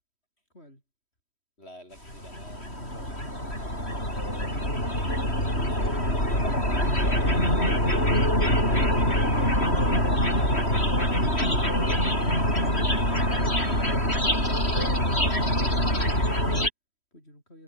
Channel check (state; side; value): late; right; 3.1 ms